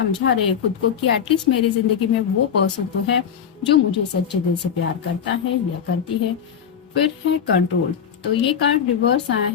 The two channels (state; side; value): quieter; right; 8.0 dB